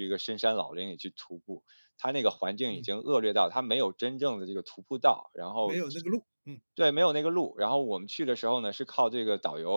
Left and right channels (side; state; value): both; inverted; correlation -1.00